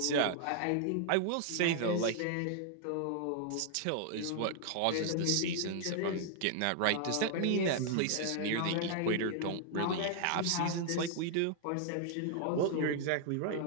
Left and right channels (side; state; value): both; different; correlation -0.01